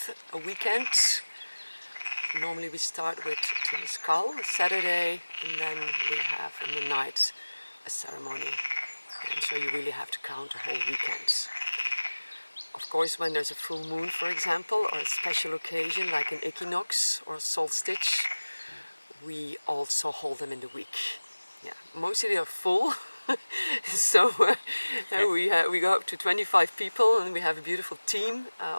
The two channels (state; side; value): inverted; both; correlation -1.00